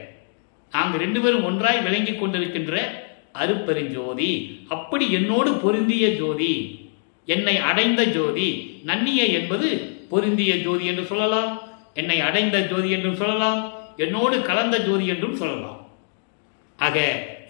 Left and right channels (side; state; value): right; silent; digital silence